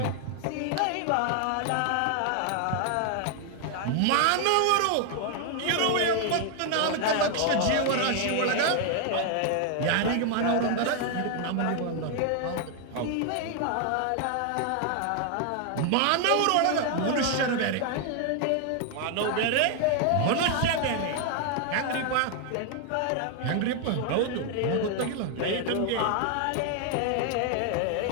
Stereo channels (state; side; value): different; both; correlation 0.00